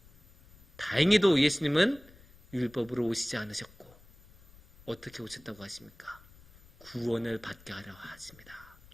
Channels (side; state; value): left; noise; rumble, 25 dB below the sound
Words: 다행히도 예수님은 율법으로 오시지 않으셨고 어떻게 오셨다고 하십니까? 구원을 받게 하려 하십니다.